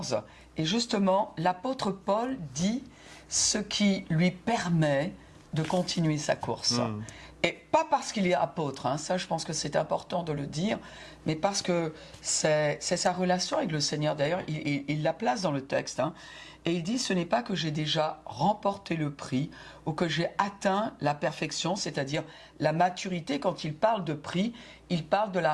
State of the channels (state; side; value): identical; both; correlation 1.00